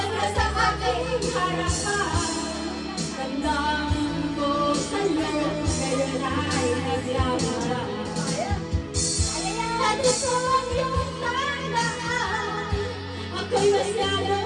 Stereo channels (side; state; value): both; identical; correlation 1.00